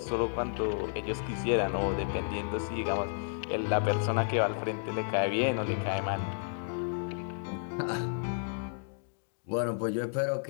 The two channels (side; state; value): right; silent; digital silence